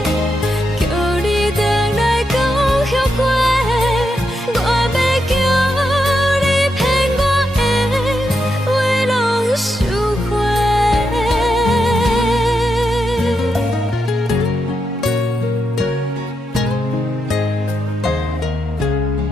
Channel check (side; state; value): both; normal; correlation 0.83